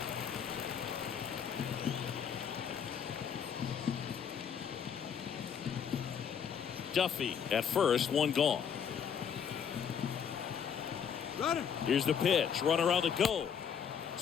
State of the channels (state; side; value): quieter; right; 7.7 dB